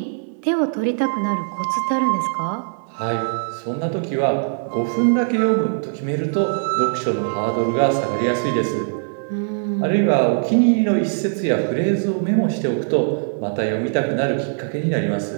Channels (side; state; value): left; silent; 58 dB below the other